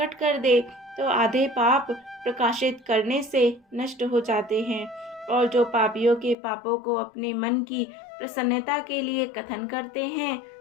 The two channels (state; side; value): drops out; right; at 6.4 s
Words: कर दे तो आधे पाप प्रकाशित करने से नष्ट हो जाते हैं और जो पापियों के पापों को अपने मन की प्रसन्नता के लिए कथन करते हैं,